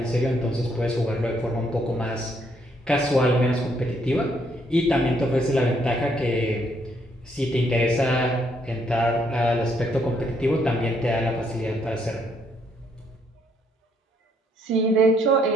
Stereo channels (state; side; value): normal; both; correlation 0.71